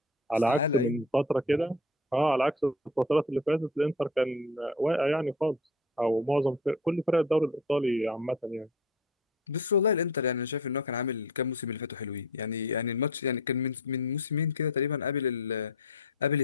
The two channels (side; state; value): both; normal; correlation 0.37